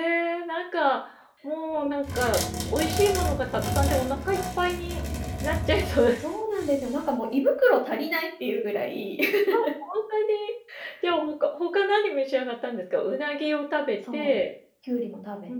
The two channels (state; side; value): identical; both; correlation 1.00